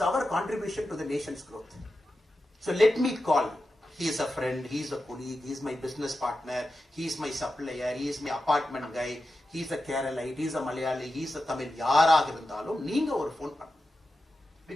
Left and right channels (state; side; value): normal; both; correlation 0.91